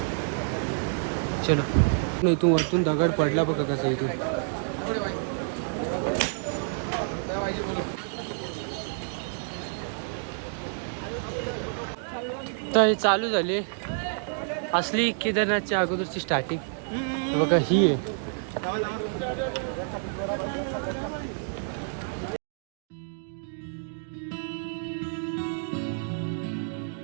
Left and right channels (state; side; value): silent; left; digital silence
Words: चलो इथून वरतून दगड पडला बघा कसं इथून. तर हे चालू झाली असली केदारनाथच्या अगोदरची स्टार्टिंग बघा ही आहे.